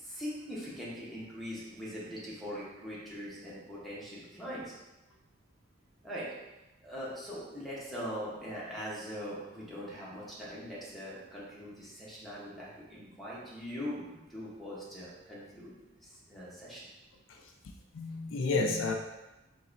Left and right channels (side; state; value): both; normal; correlation 0.38